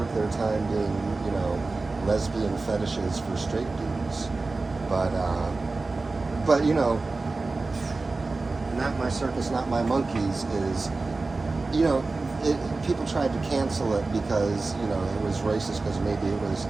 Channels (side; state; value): left; quieter; 3.6 dB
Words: their time being, lesbian fetishes for straight dudes. But Not My Circus, Not My Monkeys is, people tried to cancel it because, it was racist because maybe it was